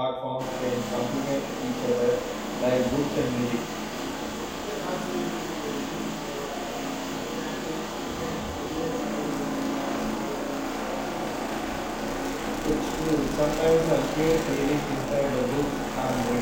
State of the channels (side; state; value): both; identical; correlation 1.00